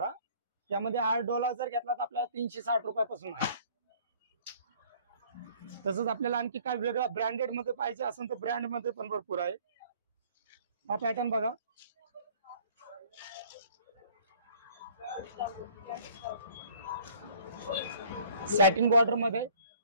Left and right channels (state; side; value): inverted; both; correlation -0.55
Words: यामध्ये 8 डोला जर घेतला तर आपल्याला 360 रुपयापासून आहे. तसंच आपल्याला आणखी काय वेगळा ब्रँडेड मध्ये पाहिजे असेल तर ब्रँड मध्ये पण भरपूर आहे. हा पॅटर्न बघा, सॅटिन बॉर्डर मध्ये